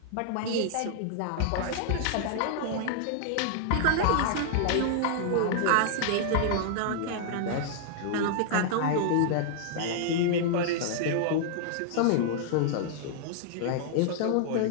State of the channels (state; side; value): different; both; correlation -0.01